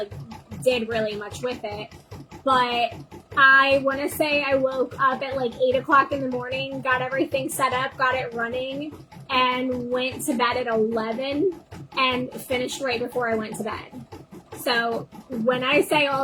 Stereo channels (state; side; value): identical; both; correlation 1.00